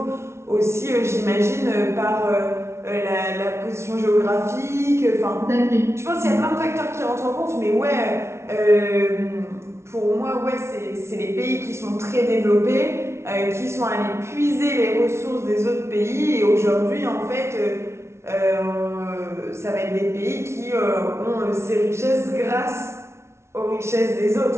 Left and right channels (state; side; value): late; left; 0.13 ms